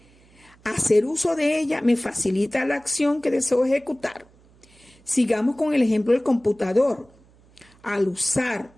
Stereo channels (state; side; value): noise; right; hum, 29 dB below the sound